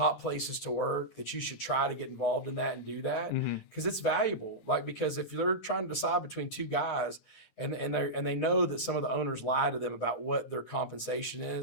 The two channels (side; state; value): right; late; 9.7 ms